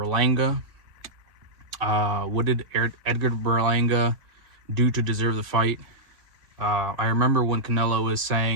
What did Edgar Berlanga do to deserve the fight? I remember when Canelo was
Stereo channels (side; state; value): left; late; 1.8 ms